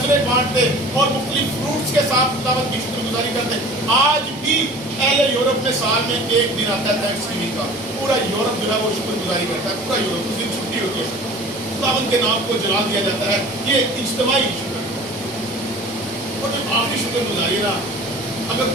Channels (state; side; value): normal; both; correlation 0.43